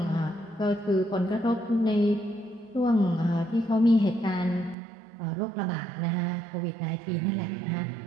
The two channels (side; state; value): left; drops out; at 4.8 s